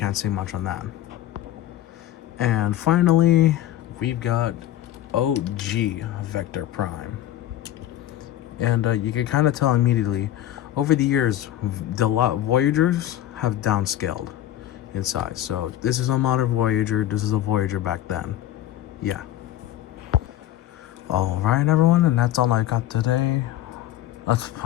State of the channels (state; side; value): quieter; right; 12.8 dB